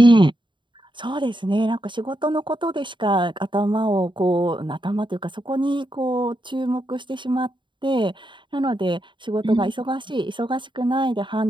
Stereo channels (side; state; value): left; late; 0.23 ms